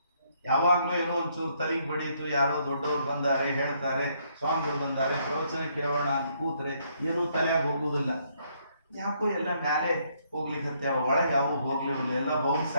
ಯಾವಾಗಲೂ ಏನೋ ಒಂಚೂರು ತಲೆಗೆ ಬಡೀತು, ಯಾರೋ ದೊಡ್ಡವ್ರು ಬಂದಾರೆ ಹೇಳ್ತಾರೆ, ಸ್ವಾಮಿಗಳು ಬಂದಾರೆ, ಪ್ರವಚನ ಕೇಳೋಣ ಅಂತ ಕೂತ್ರೆ ಏನೂ ತಲೆಯಾಗಿ ಹೋಗುವುದಿಲ್ಲ. ಯಾಕೋ ಎಲ್ಲ ಮ್ಯಾಲೆ ಹೋಗ್ಲಿಕ್ಕೆ ಒಳಗೆ ಯಾವ ಹೋಗ್ಲಿಲ್ಲ, ಎಲ್ಲ ಬೌನ್ಸ್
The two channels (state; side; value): inverted; both; correlation -0.71